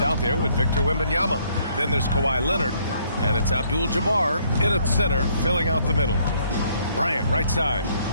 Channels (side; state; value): both; inverted; correlation -0.67